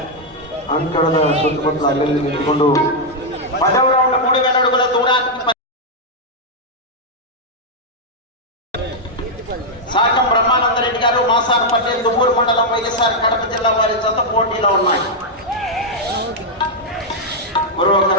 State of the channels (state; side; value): normal; both; correlation -0.03